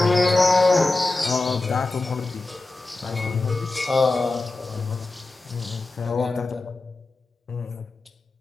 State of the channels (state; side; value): quieter; right; 3.2 dB